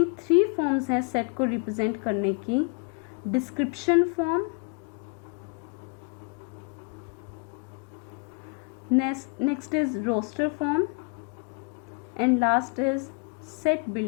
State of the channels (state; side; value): quieter; right; 34.9 dB